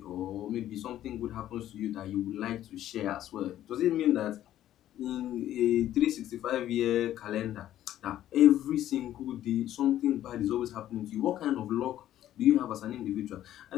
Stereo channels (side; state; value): right; quieter; 12.5 dB